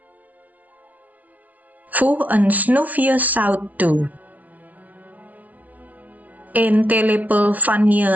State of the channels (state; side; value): late; left; 0.080 ms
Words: Voeg een snufje zout toe. 1 theelepel